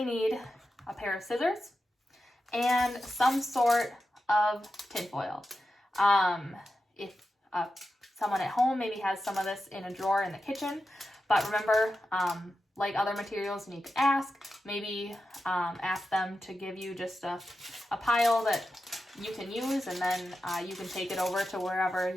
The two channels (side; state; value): both; normal; correlation 0.90